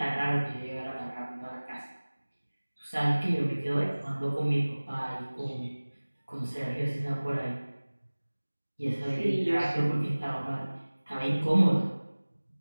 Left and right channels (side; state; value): both; inverted; correlation -1.00